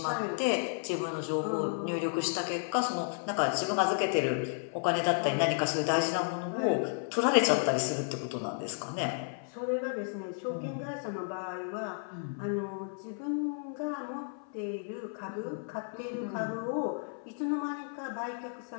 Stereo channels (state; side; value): silent; right; 56 dB below the other